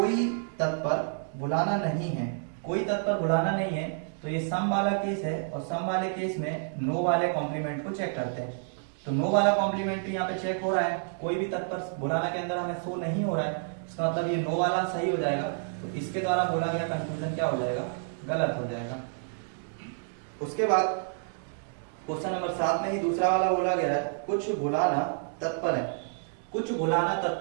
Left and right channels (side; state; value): left; silent; digital silence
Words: तत्पर भुलाना नहीं है, कोई तत्पर भुलाना नहीं है, तो ये सम वाला केस है, और सम वाले केस में नो वाले कॉम्प्लीमेंट को चेक करते हैं। तो नो वाला कॉम्प्लीमेंट्री यहाँ पे चेक हो रहा है, कोई भी तत्पर भुलाना के अंदर हमें शो नहीं हो रहा है, इसका मतलब ये नो वाला सही हो जाएगा, तो इसके द्वारा बोला गया कंक्लूजन क्या हो जाएगा, गलत हो जाएगा। उसके बाद क्वेश्चन नंबर 7 में ही दूसरा वाला बोला गया है, कुछ भुलाना तत्पर है, कुछ भुलाना